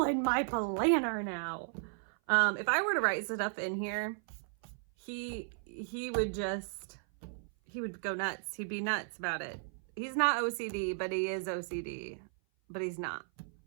my planner now. If I were to write stuff in here, he would go nuts. He'd be nuts about it. He's not OCD, but he is OCD. But he's not.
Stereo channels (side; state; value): left; silent; 54 dB below the other